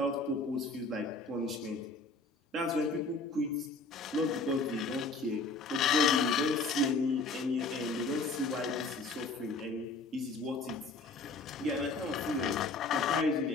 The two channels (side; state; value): right; quieter; 3.5 dB